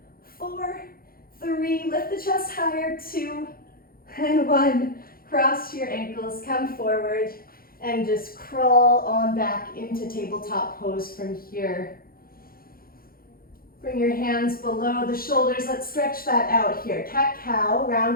4, 3, lift the chest higher, 2, and 1. Cross your ankles, come forward, and just crawl on back into tabletop pose from here. Bring your hands below the shoulders. Let's stretch that out here. Cat-cow,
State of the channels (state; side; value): late; right; 0.43 ms